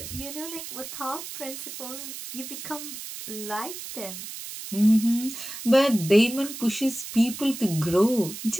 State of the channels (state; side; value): noise; right; hiss, 10 dB below the sound